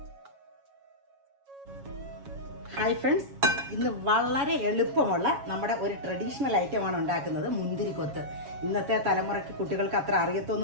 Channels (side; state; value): left; late; 7.2 ms